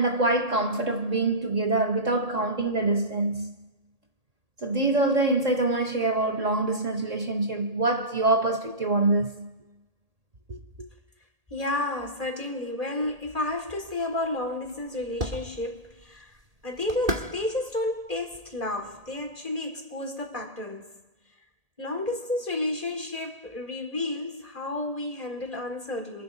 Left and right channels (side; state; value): left; late; 1.8 ms